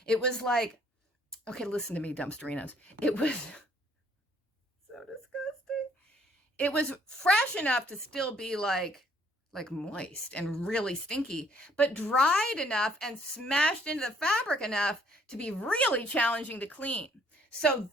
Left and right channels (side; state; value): both; normal; correlation 0.63